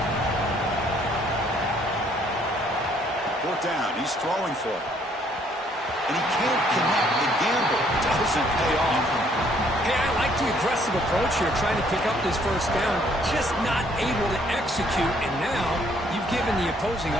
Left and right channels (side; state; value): both; normal; correlation 0.65